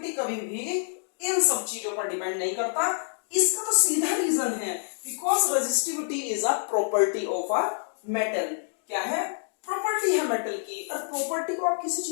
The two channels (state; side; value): silent; right; digital silence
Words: कभी भी इन सब चीजों पर डिपेंड नहीं करता। इसका तो सीधा रीजन है, because resistivity is a property of a metal. क्या है, प्रॉपर्टी है मेटल की, और प्रॉपर्टी को आप किसी